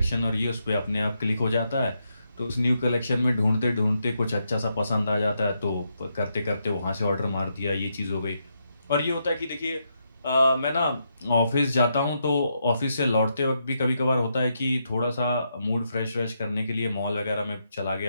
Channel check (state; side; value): inverted; both; correlation -0.81